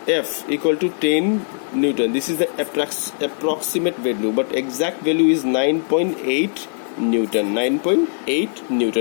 equal to 10 Newton. This is the approximate value, but exact value is 9.8 Newton. 9.8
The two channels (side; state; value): right; silent; digital silence